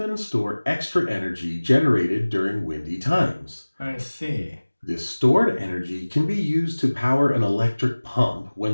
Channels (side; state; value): both; inverted; correlation -1.00